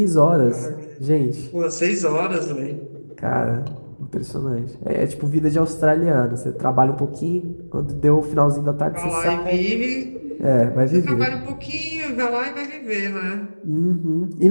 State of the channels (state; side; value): inverted; both; correlation -1.00